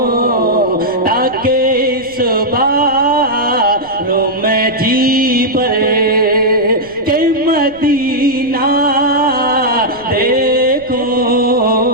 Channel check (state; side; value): noise; left; rumble, 24 dB below the sound